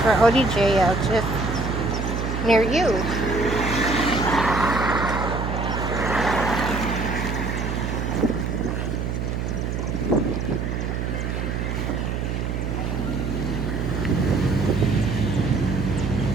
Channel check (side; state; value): right; noise; hum, 2 dB below the sound